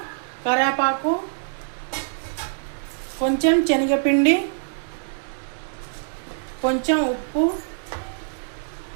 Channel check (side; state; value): left; silent; digital silence